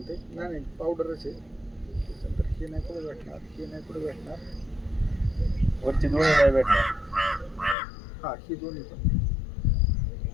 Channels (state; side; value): drops out; right; at 7.8 s